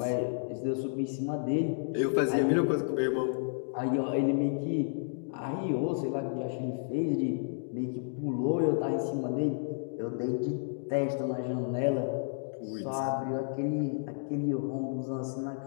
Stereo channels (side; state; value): right; silent; digital silence